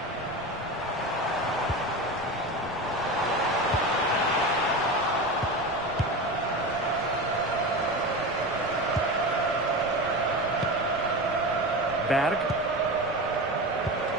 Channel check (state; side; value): noise; left; rumble, 22 dB below the sound